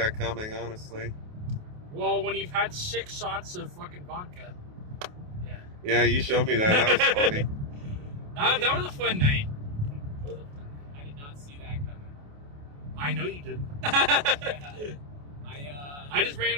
coming, honestly? Well, when you've had 6 shots of fucking vodka. Yeah. Yeah, you showed me that. That was funny. That was a fun night. I did not see that coming. I know you didn't. Yeah. I just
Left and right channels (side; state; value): left; late; 28 ms